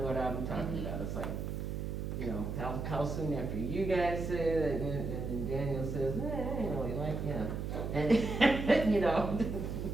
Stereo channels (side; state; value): right; noise; hum, 4 dB below the sound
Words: what I'm talking about. It's like, how soon after you guys say it, and then Daniel says, I ain't really like him. And,